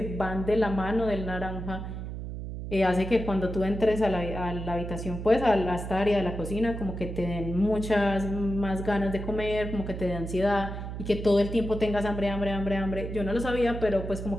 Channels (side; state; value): right; noise; hum, 7 dB below the sound